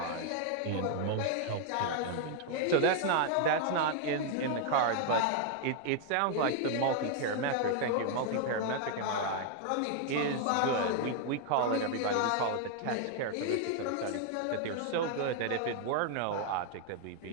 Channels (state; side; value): different; both; correlation 0.00